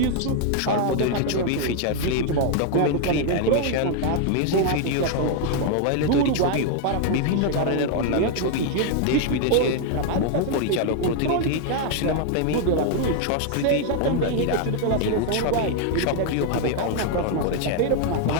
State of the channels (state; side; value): different; both; correlation 0.00